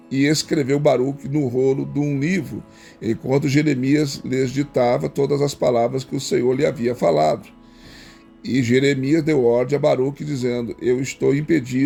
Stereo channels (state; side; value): identical; both; correlation 1.00